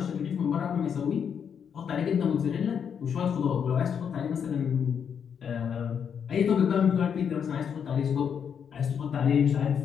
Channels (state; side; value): quieter; right; 7.5 dB